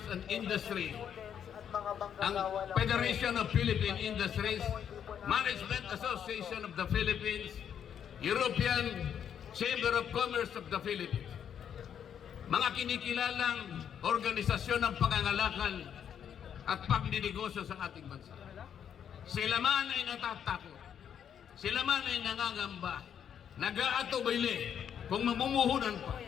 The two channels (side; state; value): right; quieter; 8.6 dB